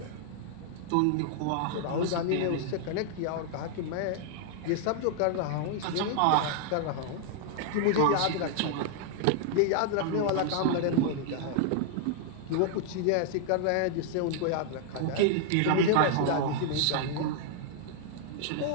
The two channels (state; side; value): different; both; correlation 0.00